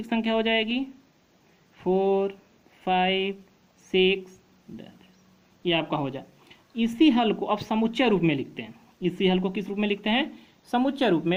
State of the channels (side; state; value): both; identical; correlation 1.00